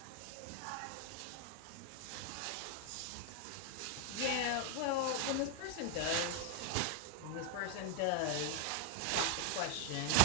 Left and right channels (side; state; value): both; different; correlation 0.00